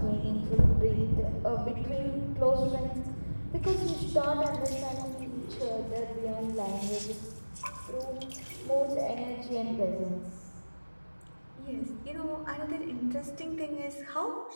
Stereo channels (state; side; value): inverted; both; correlation -1.00